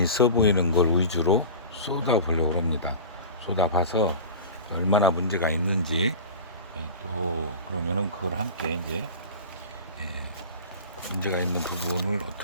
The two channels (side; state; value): both; inverted; correlation -0.34